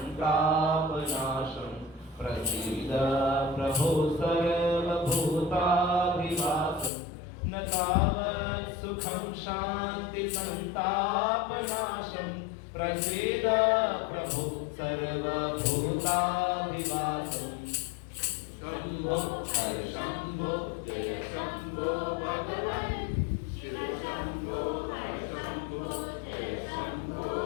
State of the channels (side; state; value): right; drops out; at 6.9 s